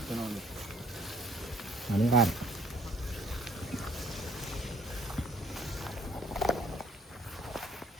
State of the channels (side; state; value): both; normal; correlation 0.61